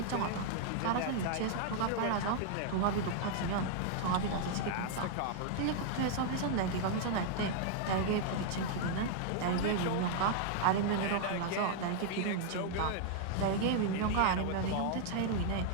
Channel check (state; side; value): different; both; correlation 0.00